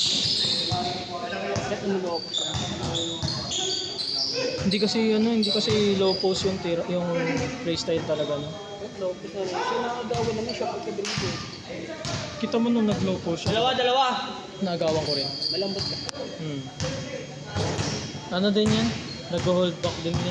Hindi kasi low post yung tira, yung playstyle talaga no. Lopez na rin. Siya nakagawa naman siya pagka-drive. Kita mo nung nag low post siya. Dalawa. Nagawan ko rin. Malambot ka. Ano din yan? Nag-hold back din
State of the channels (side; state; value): both; identical; correlation 1.00